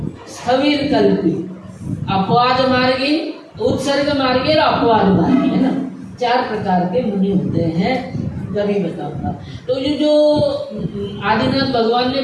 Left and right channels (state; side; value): identical; both; correlation 1.00